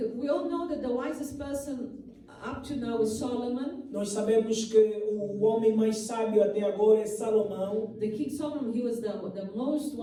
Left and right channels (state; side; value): identical; both; correlation 1.00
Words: We all know that the wisest person up to now is Solomon. Nós sabemos que o homem mais sábio até agora é Salomão. The king Solomon, he was the most